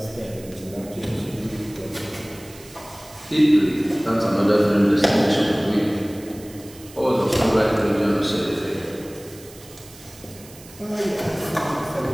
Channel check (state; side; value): noise; right; hiss, 20 dB below the sound